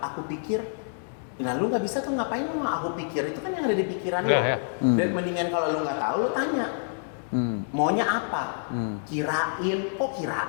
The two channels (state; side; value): silent; right; digital silence